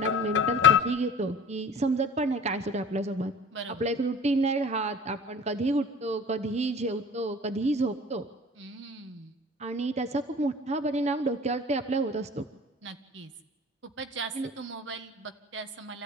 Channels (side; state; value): both; normal; correlation 0.42